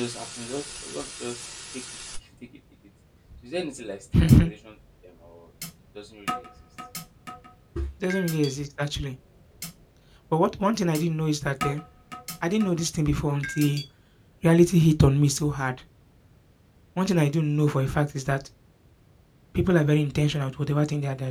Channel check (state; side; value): identical; both; correlation 1.00